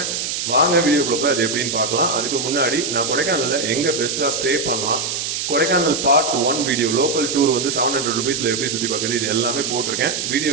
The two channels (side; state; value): right; noise; hiss, 3 dB below the sound